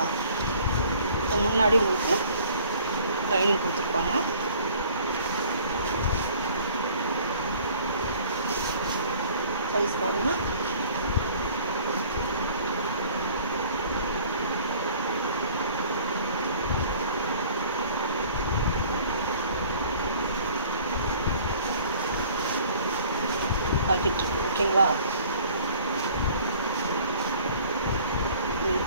இப்போ முன்னாடி உங்களுக்கு லைனிங் கொடுத்துருப்பாங்க. சைஸ் பாருங்கள். பாக்கெட் இருக்கு, ஓகேங்களா?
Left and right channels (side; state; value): both; inverted; correlation -0.52